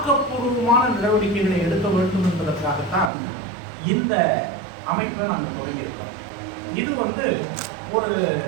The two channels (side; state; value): left; drops out; at 3.1 s